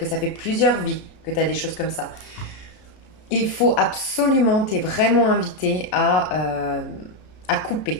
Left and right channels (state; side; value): late; right; 33 ms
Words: ça fait plusieurs vies que tu as des choses comme ça. Il faut absolument, tu es vraiment invité à